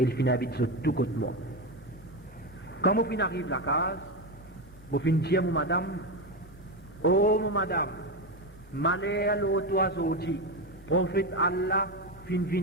ils finissent habiter sur tout côté moi. Quand mon fin arrive à la case, mon fin dit à mon madame, oh mon madame, malheur l'autre oiseau dit, prophète Allah fin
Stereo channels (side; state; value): both; normal; correlation 0.14